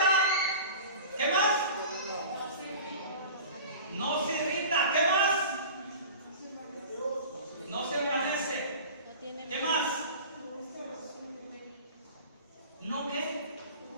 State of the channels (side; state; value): both; inverted; correlation -0.38